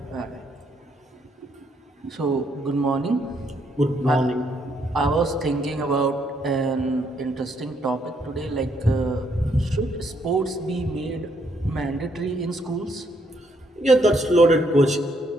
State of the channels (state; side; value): normal; both; correlation 0.72